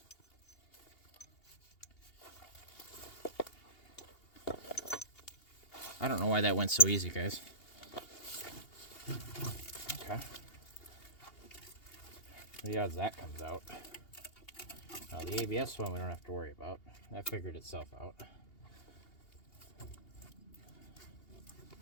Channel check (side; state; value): right; late; 2.8 ms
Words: I don't know why that went so easy, guys. Okay. The odds that comes out. Now the ABS one we don't have to worry about. That figured itself out.